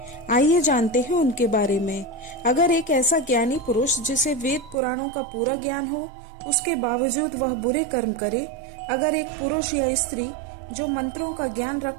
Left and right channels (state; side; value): drops out; left; at 4.8 s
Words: आइए जानते हैं उनके बारे में। अगर एक ऐसा ज्ञानी पुरुष जिसे वेद पुराणों का पूरा ज्ञान हो, उसके बावजूद वह बुरे कर्म करे, अगर एक पुरुष या स्त्री जो मंत्रों का ज्ञान